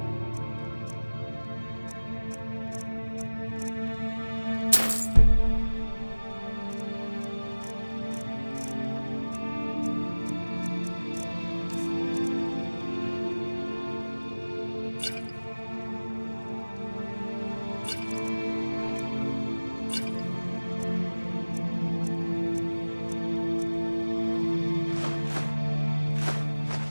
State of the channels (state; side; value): inverted; both; correlation -1.00